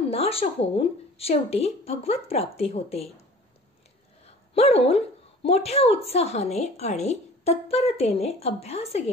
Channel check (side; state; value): both; normal; correlation 0.45